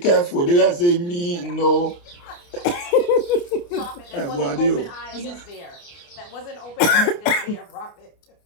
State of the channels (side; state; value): right; late; 29 ms